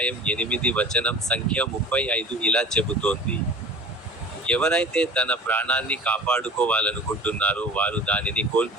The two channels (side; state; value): both; normal; correlation 0.40